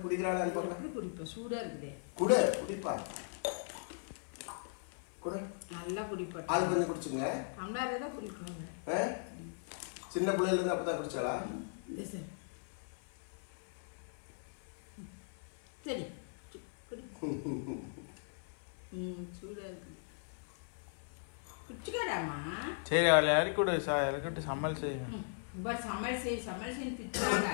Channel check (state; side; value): silent; right; 52 dB below the other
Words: குடிக்கிறாளான்னு பார்க்கலாம். குடிப்பா சூடா இருக்குதே. குடிப்பா குடி நல்லா குடிப்பா. ஆளு கொஞ்சம் குடிச்சுங்க. அம்மாரே தான் குடிக்கணும். சின்ன பிள்ளையில இருந்து அப்பதான் குடிச்சாளா? சரி குடி. சூடா இருக்கு. குடிச்சுக்கடாமா. சரி அவளை இறக்கிட்டு சமையல் செய்யும். சமையல் செய்ய திட்டுறாங்க.